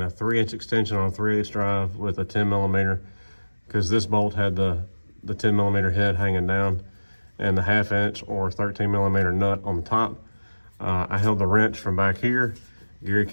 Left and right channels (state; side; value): inverted; both; correlation -1.00